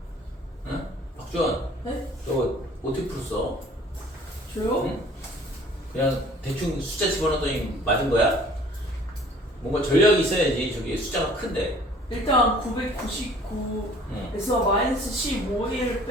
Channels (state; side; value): normal; both; correlation 0.52